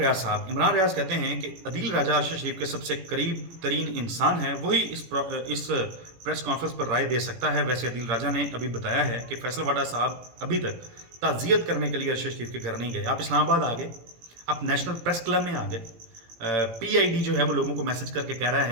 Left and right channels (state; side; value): late; left; 18 ms